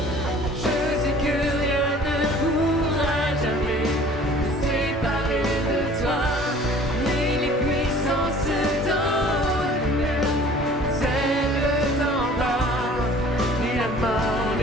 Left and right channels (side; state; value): both; normal; correlation 0.49